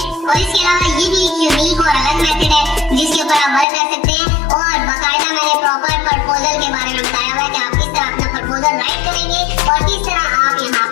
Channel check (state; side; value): drops out; right; at 3.7 s